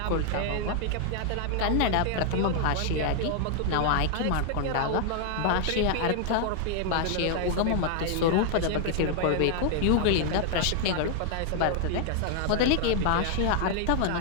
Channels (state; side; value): different; both; correlation 0.00